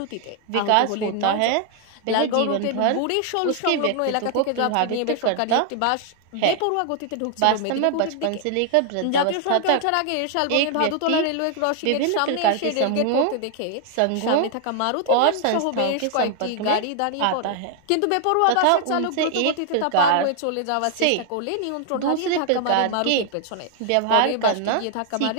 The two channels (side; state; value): both; different; correlation 0.00